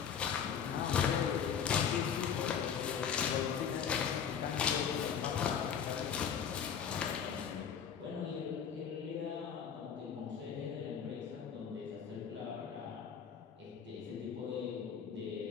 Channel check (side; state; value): right; quieter; 7.5 dB